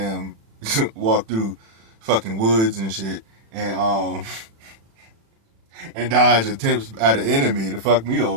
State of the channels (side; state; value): left; late; 36 ms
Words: walk through fucking woods and shit and and dodge attempts at an enemy to fuck me